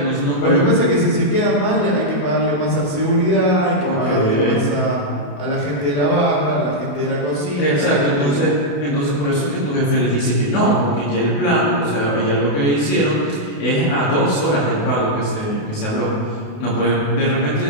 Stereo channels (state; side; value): late; right; 28 ms